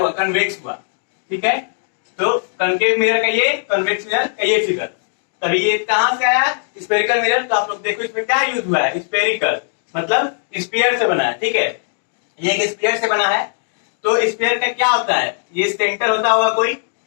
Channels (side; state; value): right; silent; digital silence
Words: कन्वेक्स हुआ। ठीक है, तो कॉनकेव मिरर का ये, कन्वेक्स मिरर का ये फिगर। तभी ये कहां से आया, स्फेरिकल मिरर। तो आप लोग देखो इसमें क्या यूज हुआ है, स्फेरिकल मतलब स्फीयर से बना है। ठीक है, ये एक स्फीयर से बना है। तो स्फीयर का क्या होता है, ये सेंटर होता होगा कोई।